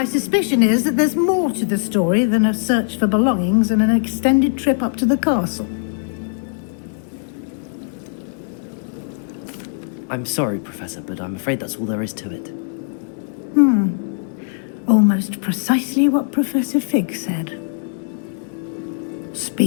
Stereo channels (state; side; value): silent; right; digital silence